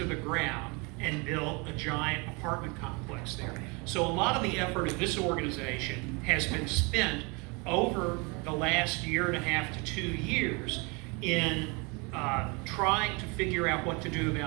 the ground and built a giant apartment complex there. So a lot of the effort of this organization has been spent over the last year and a half to 2 years in trying to figure out what to do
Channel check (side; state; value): left; quieter; 29.9 dB